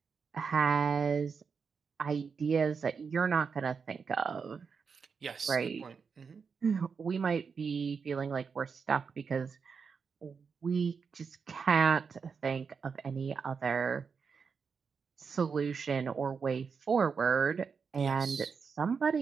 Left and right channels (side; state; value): left; quieter; 5.7 dB